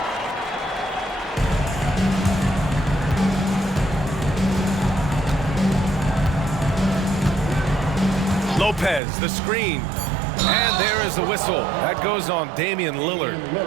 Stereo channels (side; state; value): left; drops out; at 9.0 s